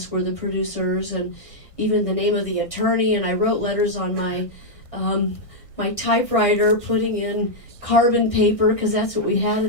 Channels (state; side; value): late; right; 1.6 ms